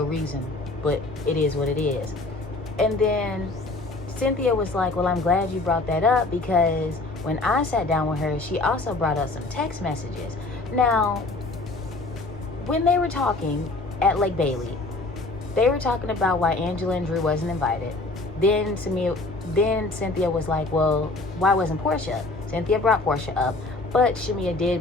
reason, but it is what it is. And then Cynthia was like, well, I'm glad you brought that up, because when I sat down with her, she also brought up some text messages. Now, when they were talking at Lake Bailey, they were talking about why Angela and Drew wasn't invited. Then Cynthia was like, well, why wasn't Portia? Cynthia brought Portia up, but Shamia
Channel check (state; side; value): quieter; right; 3.2 dB